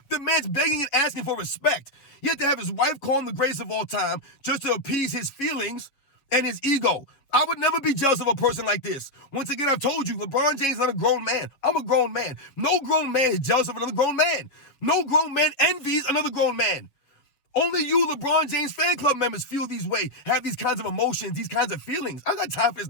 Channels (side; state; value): right; late; 7.4 ms